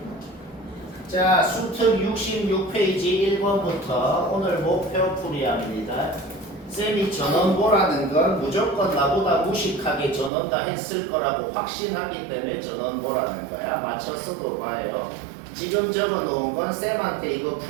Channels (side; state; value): left; drops out; at 10.3 s